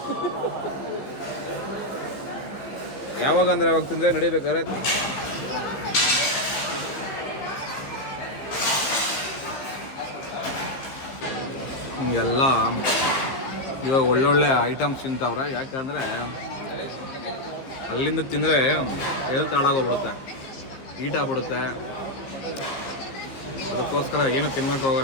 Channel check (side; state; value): right; late; 15 ms